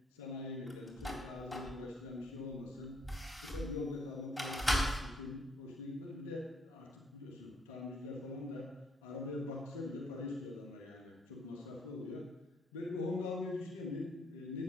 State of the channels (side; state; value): both; normal; correlation 0.69